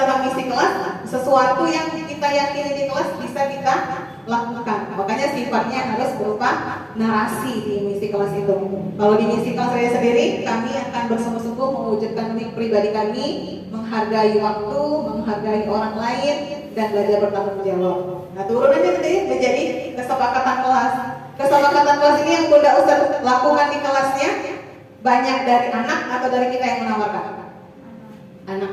misi kelas, sesuatu yang kita yakini di kelas bisa kita lakukan. Makanya sifatnya harus berupa narasi di misi kelas itu. Kalau di misi kelas saya sendiri, kami akan bersungguh-sungguh mewujudkan mimpi pribadi kami, menghargai waktu, menghargai orang lain, dan belajar bertanggung jawab. Nah, turunannya nanti menjadi kesepakatan kelas. Kesepakatan kelas ini yang Bunda Ustaz lakukan di kelasnya, banyak dari anak atau dari kita yang menawarkan? Anak.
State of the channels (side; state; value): both; identical; correlation 1.00